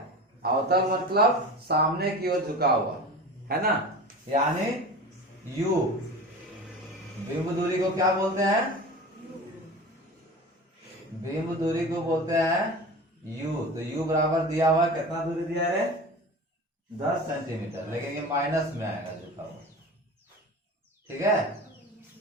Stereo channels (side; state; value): both; normal; correlation 0.34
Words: अवतल मतलब सामने की ओर झुका हुआ, है ना, यानी यू, बिंब दूरी को क्या बोलते हैं, बिंब दूरी को बोलते हैं यू, तो यू बराबर दिया हुआ है, कितना दूरी दिया है 10 सेंटीमीटर, लेकिन ये माइनस में आएगा झुका हुआ, ठीक है,